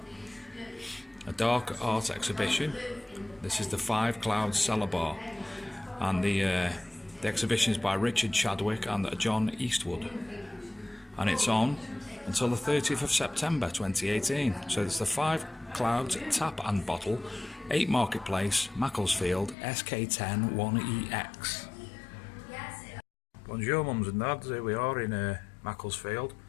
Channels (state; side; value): drops out; right; at 19.6 s